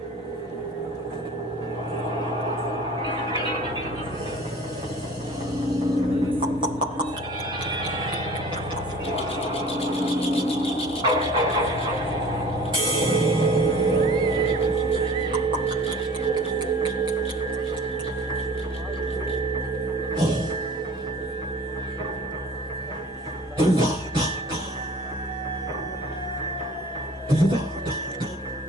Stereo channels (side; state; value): both; normal; correlation 0.45